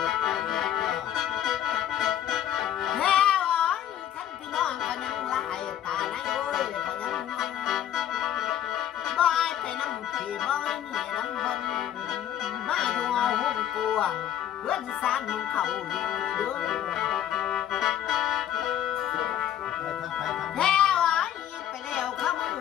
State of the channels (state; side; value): quieter; right; 11.0 dB